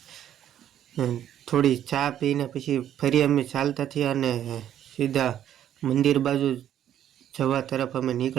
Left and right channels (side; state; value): left; quieter; 10.8 dB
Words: અને થોડી ચા પીને પછી ફરી અમે ચાલતા થયા અને સીધા મંદિર બાજુ જવા તરફ અમે